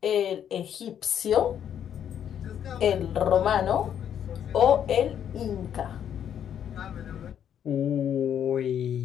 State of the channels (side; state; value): right; quieter; 9.3 dB